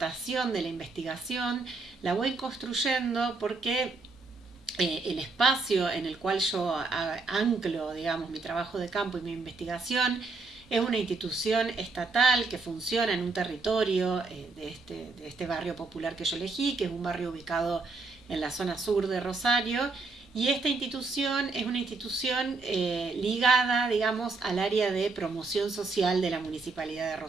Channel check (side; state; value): left; quieter; 3.9 dB